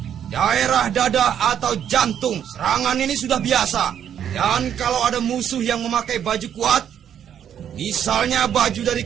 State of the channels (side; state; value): left; quieter; 9.3 dB